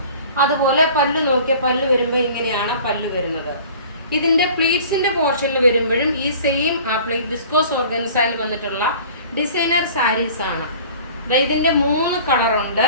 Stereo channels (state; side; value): inverted; both; correlation -0.46